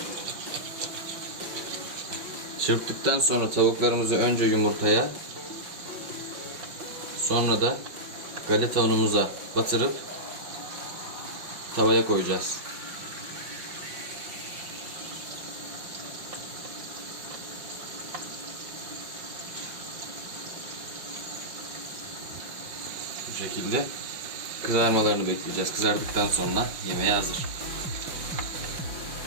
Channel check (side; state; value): left; late; 5.7 ms